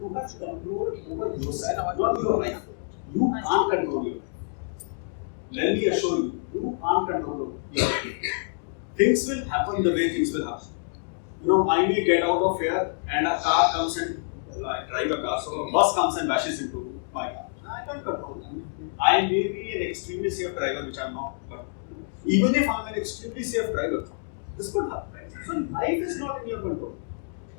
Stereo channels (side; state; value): right; silent; digital silence